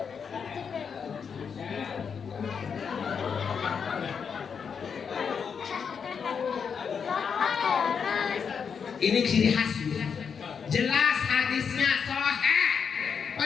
Ini ciri khas, jelas hadisnya sahih.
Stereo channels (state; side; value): quieter; right; 6.5 dB